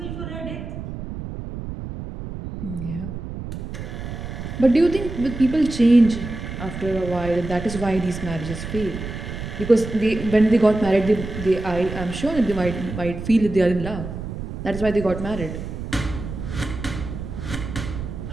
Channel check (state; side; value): noise; right; rumble, 8 dB below the sound